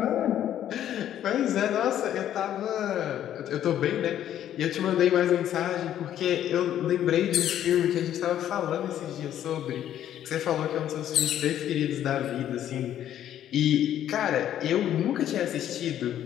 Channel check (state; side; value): quieter; right; 11.1 dB